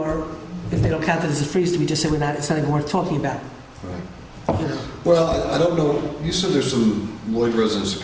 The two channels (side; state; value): both; identical; correlation 1.00